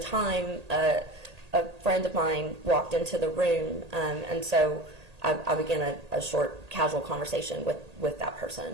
time, a friend of mine walked into the room, and so I began a short, casual conversation with that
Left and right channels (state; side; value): late; left; 1.8 ms